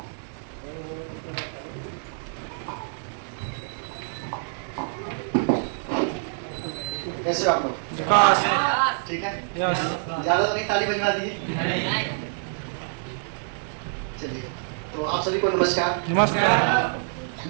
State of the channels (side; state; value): left; silent; digital silence